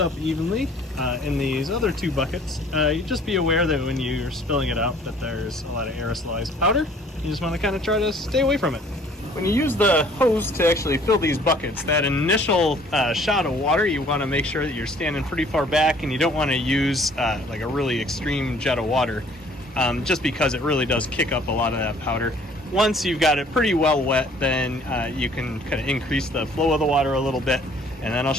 evenly in these other 2 buckets. You just be aware that when you're spilling it out that there's a lot of aerosolized powder. You just want to kind of try to stay away from it. When you use the hose to actually fill these buckets, that initial shot of water, you want to make sure that you're standing pretty far back, and you don't want to use like a really extreme jet of water. Just because it really does kick up a lot of that powder. Once you've got it pretty well wet, then you can kind of increase the flow of the water a little bit, and then I'll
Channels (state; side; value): normal; both; correlation 0.56